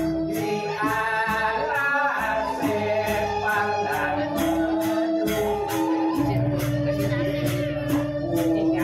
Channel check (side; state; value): both; identical; correlation 1.00